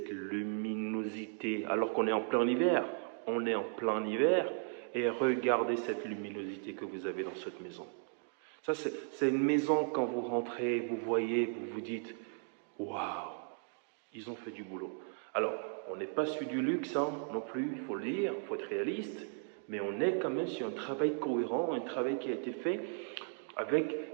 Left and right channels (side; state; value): left; silent; 54 dB below the other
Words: luminosité, alors qu'on est en plein hiver. On est en plein hiver. Et regardez cette luminosité que vous avez dans cette maison. Ça, c'est une maison, quand vous rentrez, vous voyez, vous vous dites, waouh, ils ont fait du boulot. Alors, on n'est pas sur du luxe hein, non plus, il faut le dire, il faut être réaliste, mais on est quand même sur un travail cohérent, un travail qui a été fait